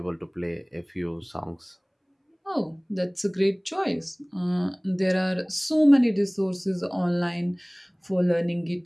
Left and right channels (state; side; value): identical; both; correlation 1.00